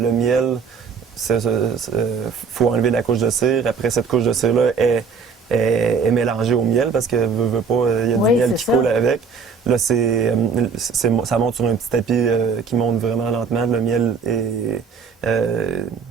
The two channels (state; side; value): quieter; left; 5.5 dB